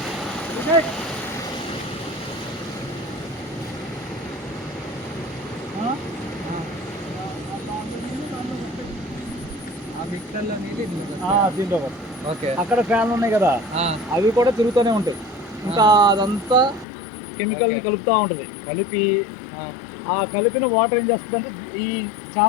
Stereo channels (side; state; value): right; drops out; at 16.9 s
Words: మిక్సర్లో దీంట్లో ఓకే. అక్కడ ఫ్యాన్లు ఉన్నాయి కదా, అవి కూడా తిరుగుతూనే ఉంటాయి. ఇంకా అదంతా కెమికల్ని కలుపుతూ ఉంటుంది. కలిపి ఆ కలిపిన వాటర్ ఏం చేస్తుంది అంటే ఈ